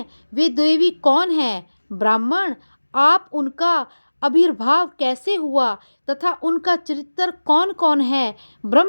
वे देवी कौन है? ब्राह्मण, आप उनका आविर्भाव कैसे हुआ तथा उनका चरित्र कौन कौन है?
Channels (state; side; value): inverted; both; correlation -1.00